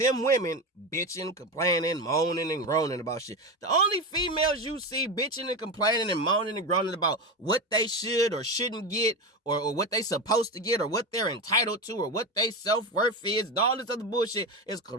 women bitching, complaining, moaning, and groaning about shit. The only females you see bitching and complaining and moaning and groaning about what they should or shouldn't get or what they supposed to get or what they're entitled to or what they self-worth is and all this other bullshit is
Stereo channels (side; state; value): both; normal; correlation 0.19